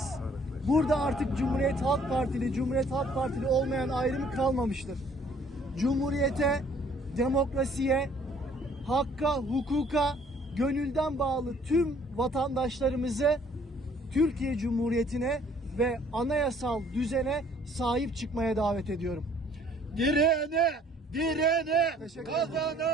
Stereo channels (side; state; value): both; normal; correlation 0.59